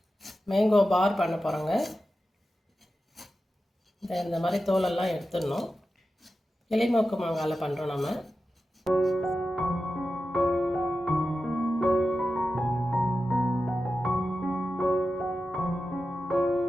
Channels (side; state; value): both; normal; correlation 0.92